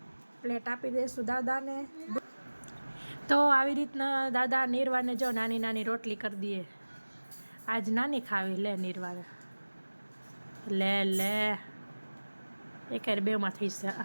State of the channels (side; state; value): both; inverted; correlation -1.00